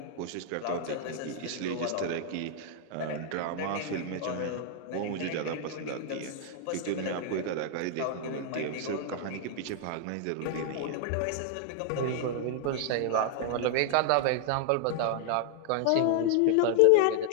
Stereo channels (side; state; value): both; different; correlation -0.01